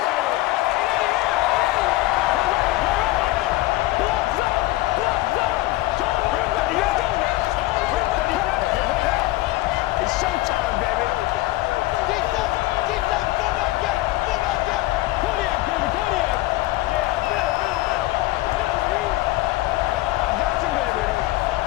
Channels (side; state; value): right; quieter; 18.1 dB